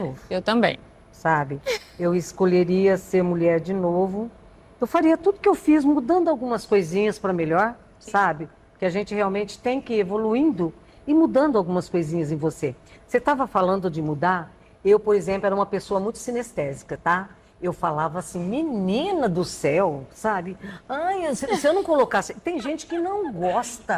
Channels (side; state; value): both; identical; correlation 1.00